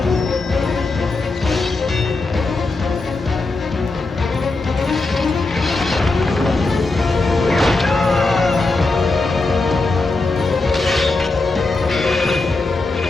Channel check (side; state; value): right; quieter; 3.3 dB